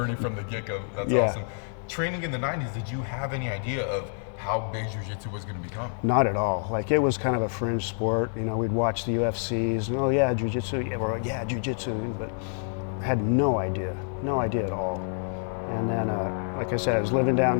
from the get-go. That's awesome. Training in the 90s, did you have any idea of how big jiu-jitsu was going to become? Not at all. Like, it was kind of a fringe sport. We'd watch the UFCs, and oh yeah, jiu-jitsu, yeah, jiu-jitsu, but I had no idea at all. And then, like I said, I was living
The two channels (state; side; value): silent; right; 55 dB below the other